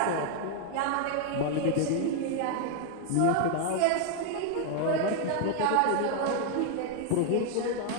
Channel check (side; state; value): both; different; correlation 0.00